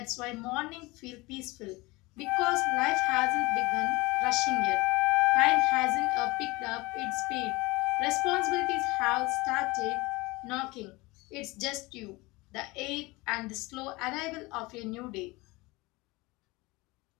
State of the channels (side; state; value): right; quieter; 22.9 dB